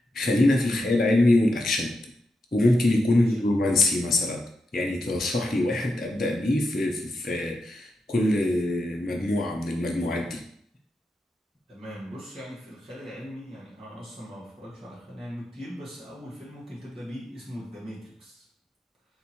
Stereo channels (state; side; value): normal; both; correlation 0.86